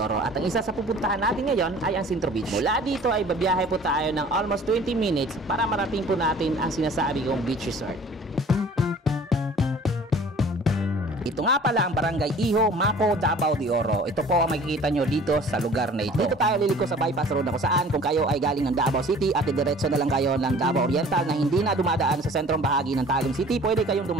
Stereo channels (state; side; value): normal; both; correlation 0.48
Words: at ang isa sa pupuntahan natin ngayon ay ang Centro Beach. Mula dito ay babiyahe po tayo ng almost 20 minutes para marating po natin ang sinasabi kong beach resort. Ito nga pala ang Barangay Iho, Mako, Davao de Oro. Ito po ang makikita nyo dito sa lugar na ito. Dito tayo liliko sa bypass road na kung saan kung kayo ay galing ng Davao City at diretso na lang kayo ng Davao Oriental na hindi na dumadaan sa sentrong bahagi ng Tagum City, pwede kayong